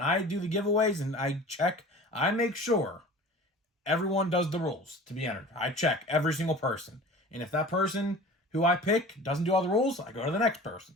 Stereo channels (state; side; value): normal; both; correlation 0.41